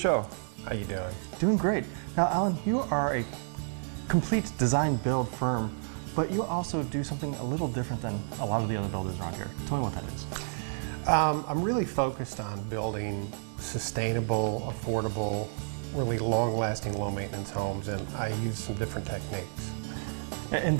How you doing? Doing great. Now, Alan, you are a complete design build firm, but you also do something a little different than a lot of the other builders around here. Tell me what that is. I'm really focused on building sustainable, affordable, really long-lasting, low-maintenance homes, and I use some different techniques.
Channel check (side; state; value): left; silent; digital silence